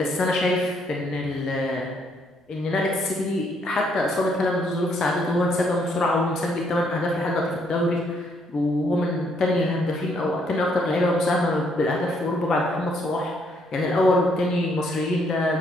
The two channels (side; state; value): both; normal; correlation 0.71